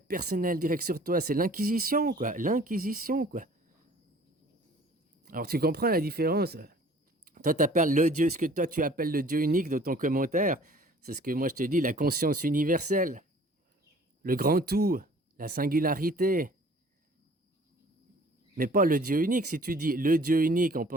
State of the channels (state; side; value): normal; both; correlation 0.51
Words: personnelles directes sur toi. C'est l'inquisition, quoi. L'inquisition, quoi. Alors tu comprends la différence? Toi, t'appelles le Dieu, ce que toi tu appelles le Dieu unique dans ton commentaire, c'est ce que moi je te dis, la conscience universelle, le grand tout, la singularité. Mais pas le Dieu unique. Si tu dis le Dieu unique, on